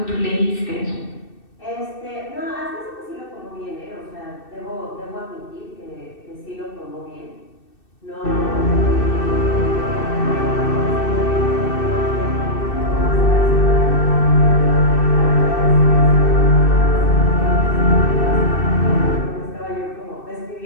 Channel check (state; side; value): late; right; 2.6 ms